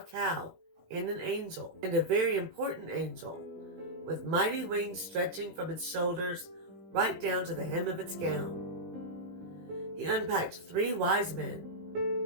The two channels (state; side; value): late; left; 18 ms